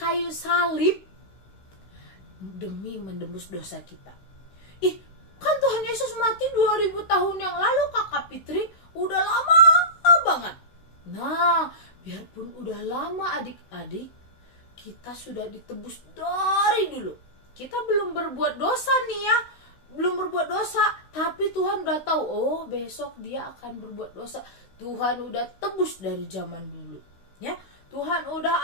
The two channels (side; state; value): right; late; 16 ms